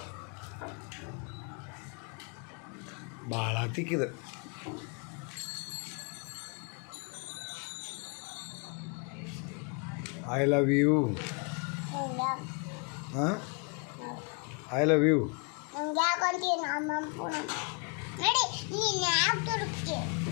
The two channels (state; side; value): quieter; right; 36.1 dB